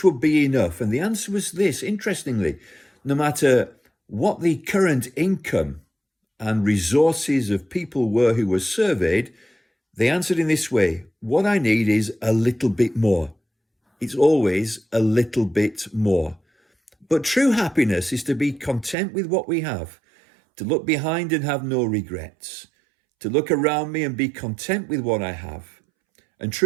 would be enough? And the answer was this, interestingly: no matter what the current income and resources of people were who were surveyed, they answered in this way: what I need is a little bit more. It's always a little bit more. But true happiness is to be content with what we have, to look behind and have no regrets, to look around me and be content with what I have. And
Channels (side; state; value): left; drops out; at 18.9 s